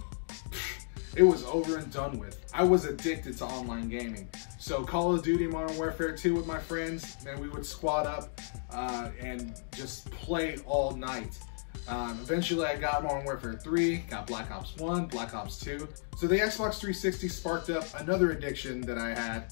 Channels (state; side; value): silent; right; digital silence